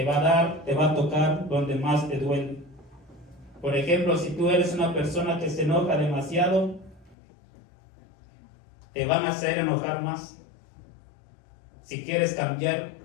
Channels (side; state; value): right; drops out; at 7.2 s